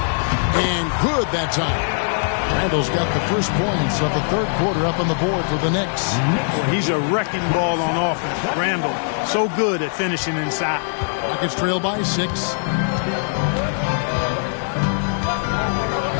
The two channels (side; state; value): right; silent; 65 dB below the other